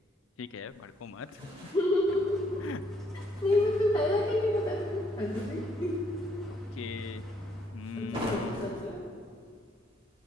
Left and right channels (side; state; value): both; normal; correlation 0.69